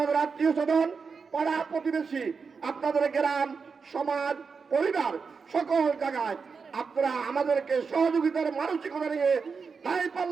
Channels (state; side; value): quieter; left; 5.3 dB